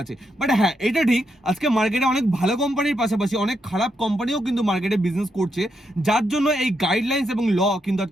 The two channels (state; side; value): normal; both; correlation 0.81